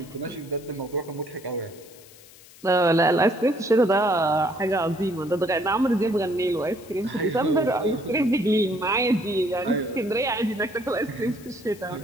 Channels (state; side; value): noise; left; hiss, 22 dB below the sound